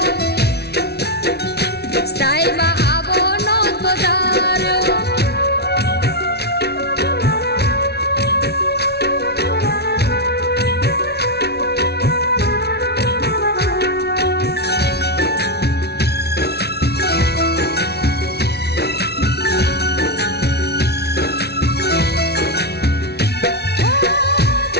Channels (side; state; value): right; late; 0.48 ms